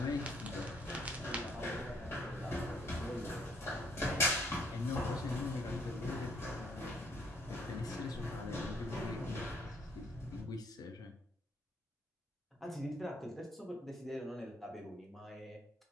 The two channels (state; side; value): normal; both; correlation 0.66